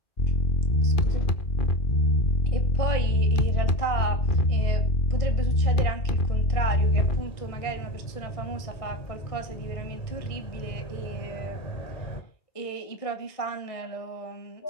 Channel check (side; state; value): right; late; 1.6 ms